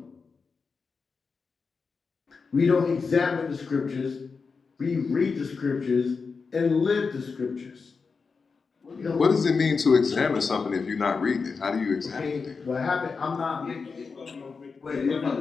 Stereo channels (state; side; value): quieter; right; 4.9 dB